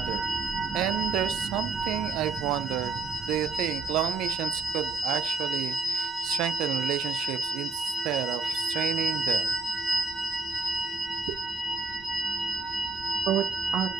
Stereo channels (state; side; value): quieter; left; 4.2 dB